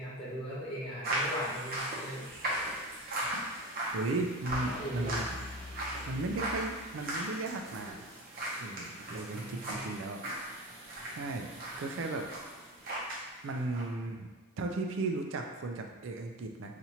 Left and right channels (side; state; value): both; normal; correlation 0.27